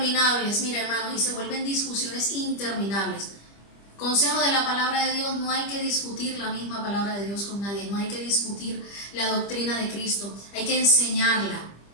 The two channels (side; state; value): right; late; 25 ms